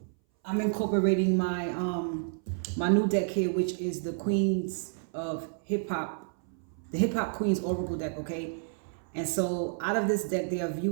my my new deck here, which is the Queens of Hip Hop. The Hip Hop Queens Oracle deck, okay? And so out of this deck, they are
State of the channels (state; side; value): silent; left; 58 dB below the other